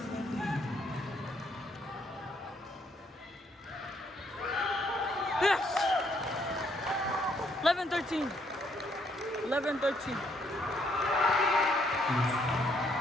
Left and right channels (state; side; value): normal; both; correlation 0.70